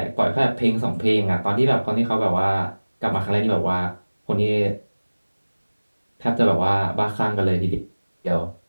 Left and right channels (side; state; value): both; inverted; correlation -1.00